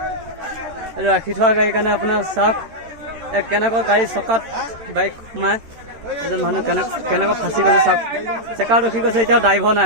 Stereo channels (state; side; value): late; left; 13 ms